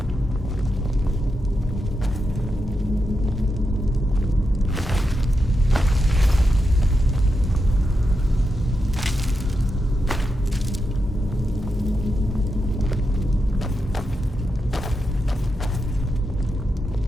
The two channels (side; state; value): both; normal; correlation 0.86